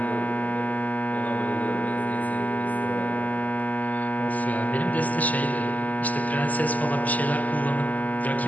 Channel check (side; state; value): right; late; 0.078 ms